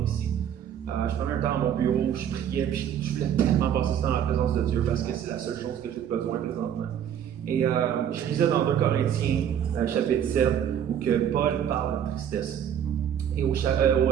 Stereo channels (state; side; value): quieter; left; 9.4 dB